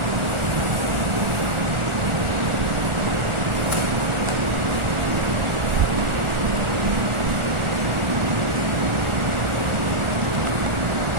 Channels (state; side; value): late; left; 1.4 ms